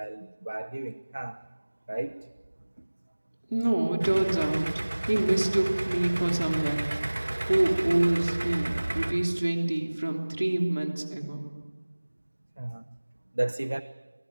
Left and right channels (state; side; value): inverted; both; correlation -1.00